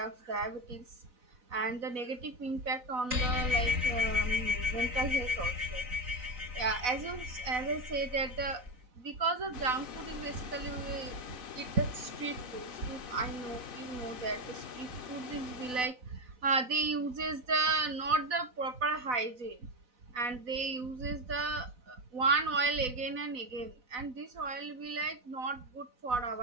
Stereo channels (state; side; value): late; left; 4.0 ms